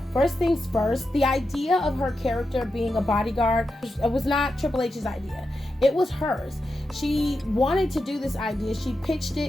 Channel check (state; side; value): normal; both; correlation 0.88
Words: First things first, the idea of her character being a bodyguard, it was not Triple H's idea. It was hers. She wanted to do this idea. She pitched